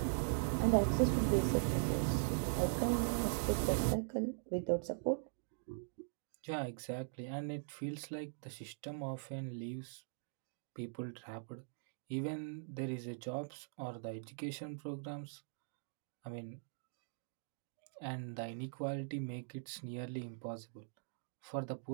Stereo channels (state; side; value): silent; left; digital silence